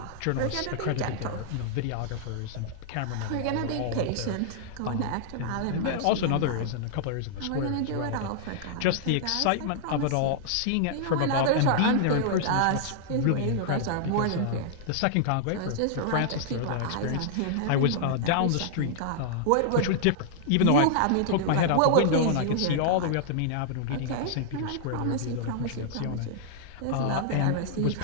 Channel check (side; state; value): both; different; correlation -0.01